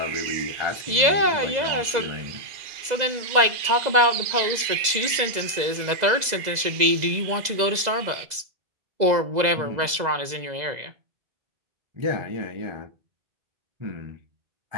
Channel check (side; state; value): left; late; 2.0 ms